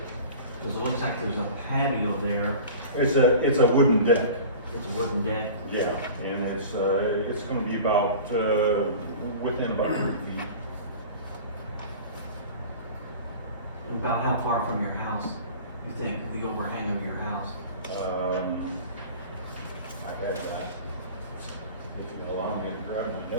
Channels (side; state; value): both; inverted; correlation -0.39